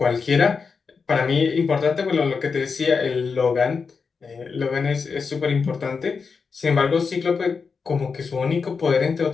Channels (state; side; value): quieter; right; 5.2 dB